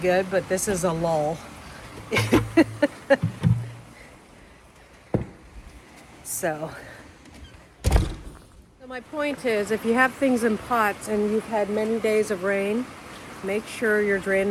but this is a lull. So my point is, if you have things in pots and you've had many days of rain, make sure your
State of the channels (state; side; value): identical; both; correlation 1.00